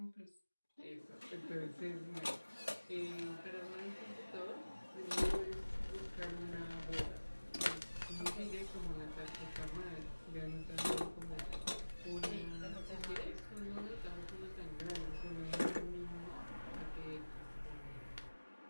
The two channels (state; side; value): inverted; both; correlation -1.00